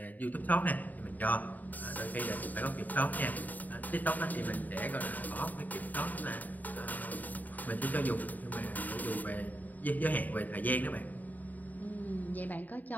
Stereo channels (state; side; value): late; right; 0.082 ms